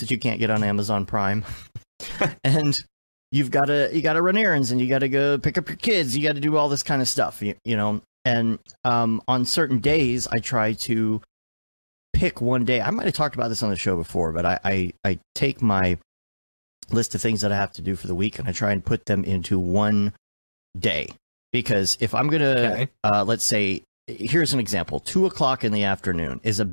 you can't get on Amazon Prime. And you got to run errands, and you got to go pick up your kids. You got to do all this kind of stuff, you know. And on certain days, I try to pick one day. I might have talked about this on the show before, but I take my list of things that I have to do for the week, and I try and put them into one day. Because if I'm going to, let's say, here's an example, 2:00 in the afternoon is a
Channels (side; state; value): both; inverted; correlation -1.00